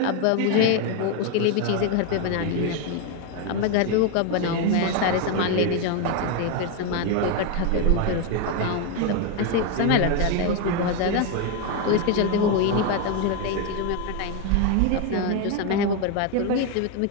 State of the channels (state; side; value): different; both; correlation 0.02